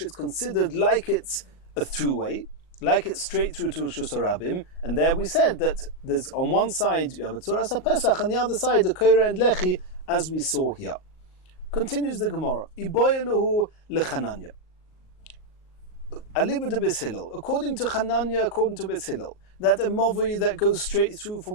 it's considered like it's a throughway, like it's straight through to rshus harabim, and there we said that there's on one side you have a tzuras HaPesach and the other side a koire and lechi, as we saw here. Continues the Gemara. Iboyeluhu lechananya. Aliba de Beis Hillel. According to Hananya, according to Beis Hillel, that a movi that goes straight through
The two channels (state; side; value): late; right; 38 ms